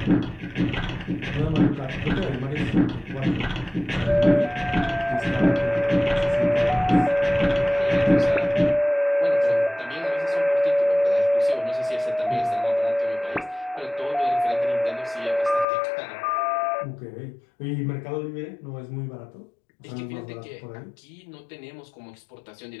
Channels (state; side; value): drops out; right; at 15.7 s